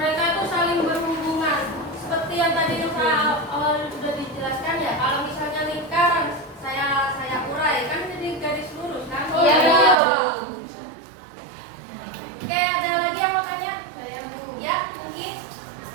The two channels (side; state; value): left; drops out; at 10.0 s